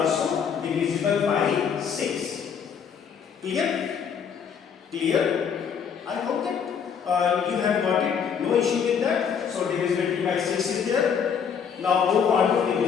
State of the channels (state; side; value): quieter; right; 7.1 dB